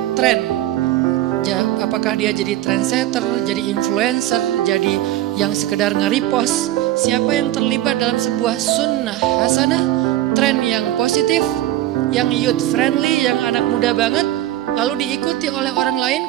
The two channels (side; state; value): left; quieter; 14.2 dB